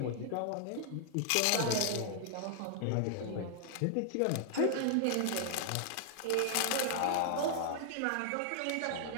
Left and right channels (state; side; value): different; both; correlation 0.00